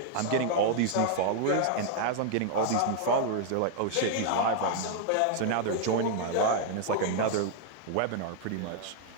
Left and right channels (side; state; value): both; different; correlation -0.01